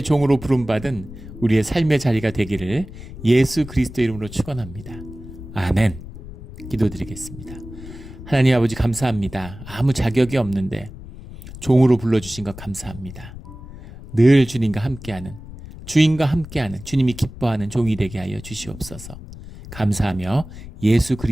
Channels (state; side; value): noise; left; rumble, 14 dB below the sound